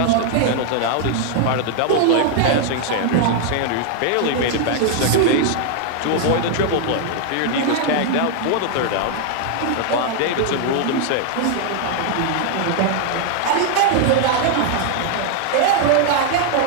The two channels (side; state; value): both; different; correlation 0.00